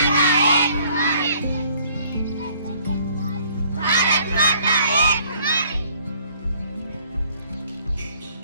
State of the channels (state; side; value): inverted; both; correlation -0.59